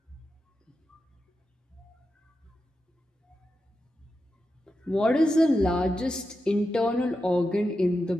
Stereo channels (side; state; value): both; normal; correlation 0.89